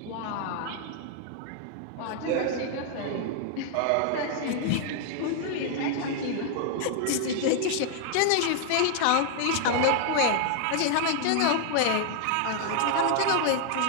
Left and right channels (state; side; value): different; both; correlation 0.00